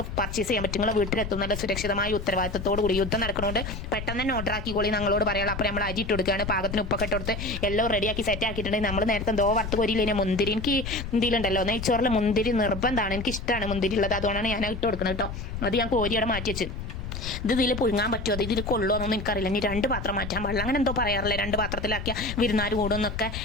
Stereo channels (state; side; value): noise; left; rumble, 7 dB below the sound